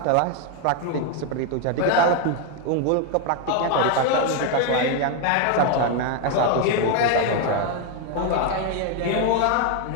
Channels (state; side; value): different; both; correlation 0.01